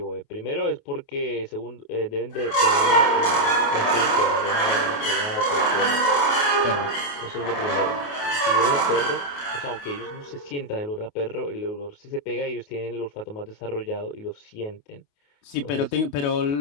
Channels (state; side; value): late; right; 28 ms